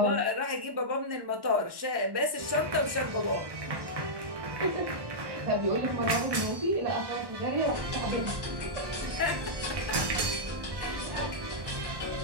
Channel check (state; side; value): late; left; 1.1 ms